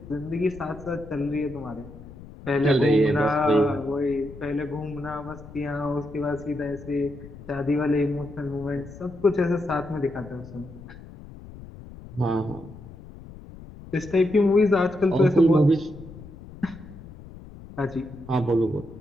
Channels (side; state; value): left; noise; rumble, 16 dB below the sound